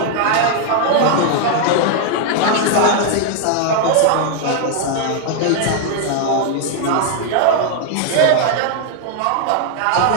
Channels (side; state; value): both; different; correlation 0.00